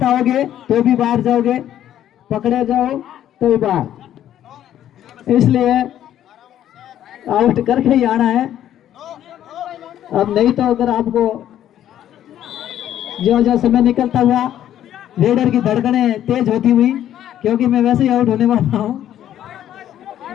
आओगे तो भी बाहर जाओगे, पकड़े जाओ तो भी बाहर, इसलिए आउट करके ही आना है। अब नहीं तो अगर आपको जो जो समय निकलता हुआ रेडर की धड़कनें तेज होती हुई, क्योंकि मैं वैसे ही आउट होने वाला हूं,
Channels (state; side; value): quieter; right; 11.4 dB